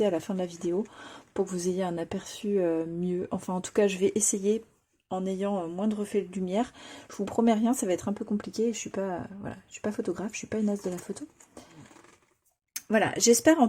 à la fin de la vidéo pour que vous ayez un aperçu mieux. Enfin, en tout cas, je vais essayer en ayant moins de reflets de lumière. Je vous promets rien, ça va être un peu compliqué. Je suis pas, voilà, je suis pas photographe, je suis pas une as de la photo. Voilà, j'espère en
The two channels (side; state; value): both; identical; correlation 1.00